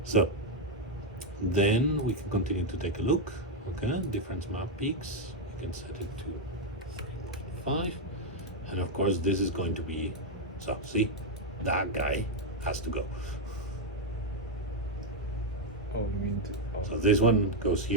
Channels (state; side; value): normal; both; correlation 0.01